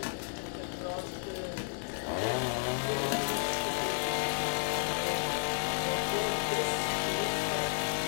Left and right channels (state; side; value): silent; right; digital silence